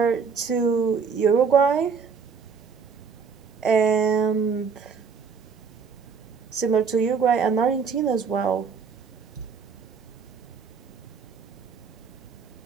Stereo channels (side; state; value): left; quieter; 5.8 dB